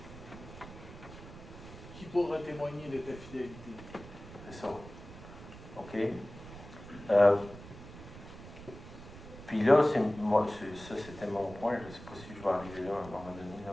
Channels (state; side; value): noise; right; rumble, 15 dB below the sound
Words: Qui pourra témoigner de ta fidélité? C'est ça. OK? Puis là, ça c'était mon point. Je ne sais pas si je vais arriver là à un moment donné. Là,